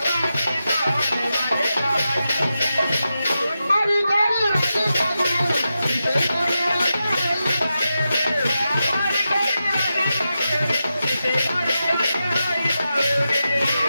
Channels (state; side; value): inverted; both; correlation -0.90